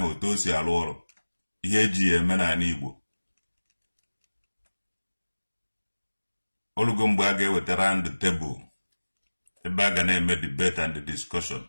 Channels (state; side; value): inverted; both; correlation -1.00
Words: otu o si alụ ọrụ ihe eji ya eme n'ala Igbo olugo mgbe a ga-ewetara ndị tebụl ebe a ga na-eme debate and discussion